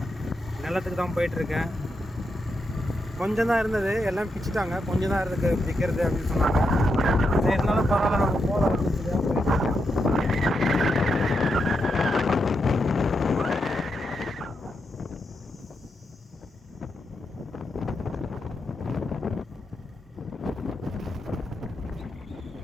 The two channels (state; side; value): normal; both; correlation 0.84